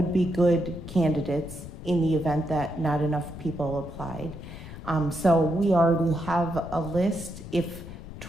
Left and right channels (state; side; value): noise; left; rumble, 13 dB below the sound